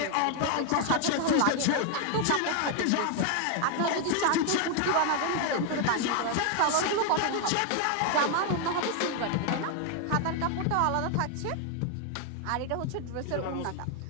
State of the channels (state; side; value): different; both; correlation 0.00